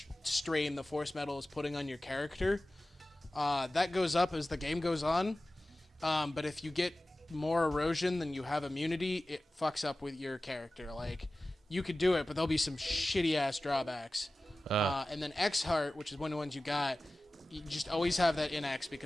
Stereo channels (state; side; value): normal; both; correlation 0.96